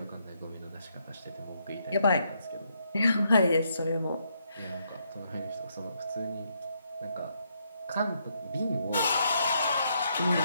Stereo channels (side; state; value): both; inverted; correlation -0.76